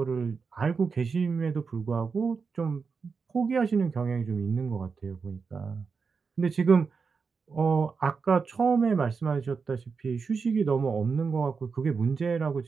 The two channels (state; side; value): quieter; left; 5.2 dB